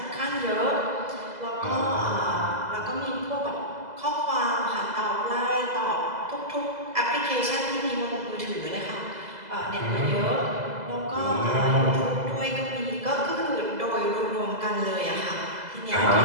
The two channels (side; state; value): left; late; 2.0 ms